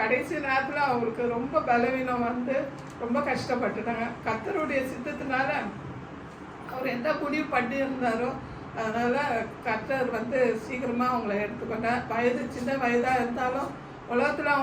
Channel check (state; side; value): identical; both; correlation 1.00